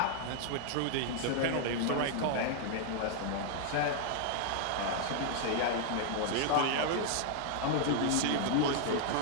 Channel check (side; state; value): both; different; correlation 0.00